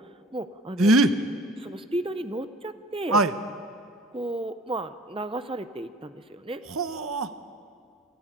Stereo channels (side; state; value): both; normal; correlation 0.48